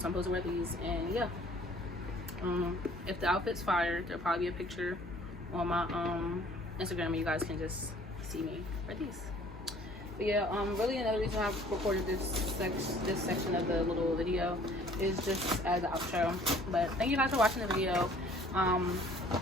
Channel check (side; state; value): both; normal; correlation 0.55